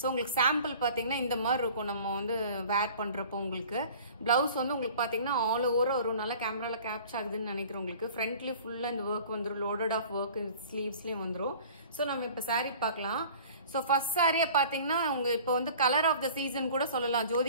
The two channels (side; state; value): both; inverted; correlation -0.46